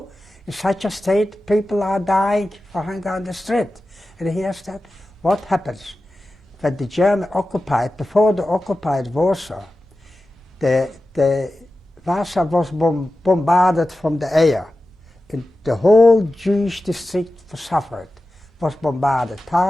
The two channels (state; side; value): normal; both; correlation 0.94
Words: In such a state, people are dying for hunger on the street. And here's that. What happens? When the German occupied, before they occupied Warsaw, the Warsaw was bombarded from the air. And the whole Jewish district suffered, was bombarded.